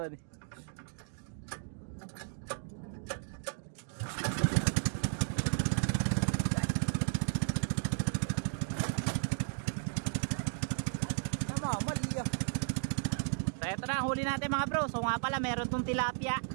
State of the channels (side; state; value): left; silent; 55 dB below the other